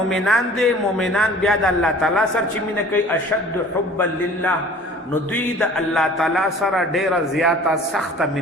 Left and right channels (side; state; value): both; normal; correlation 0.47